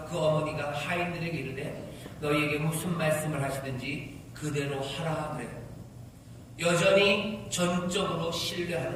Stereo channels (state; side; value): identical; both; correlation 1.00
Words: 그 어머니가 하인들에게 이르되 너희에게 무슨 말씀을 하시든지 그대로 하라 그래요. 여전히 전적으로 신뢰하는